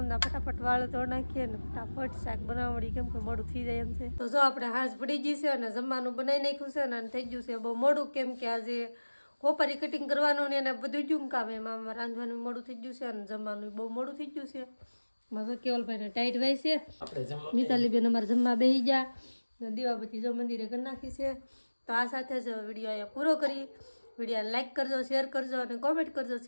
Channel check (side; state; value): both; inverted; correlation -1.00